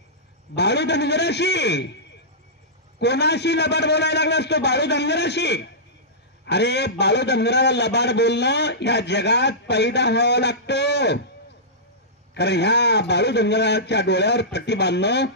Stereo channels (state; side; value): normal; both; correlation -0.16